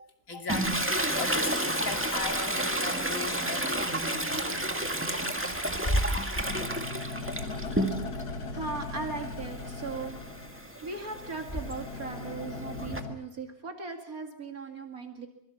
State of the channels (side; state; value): both; normal; correlation 0.10